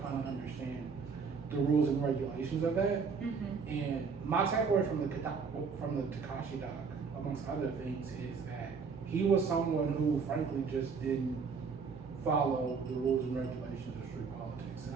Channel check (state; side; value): quieter; left; 5.4 dB